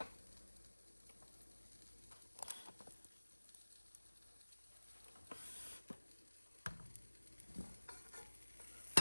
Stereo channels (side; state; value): both; inverted; correlation -1.00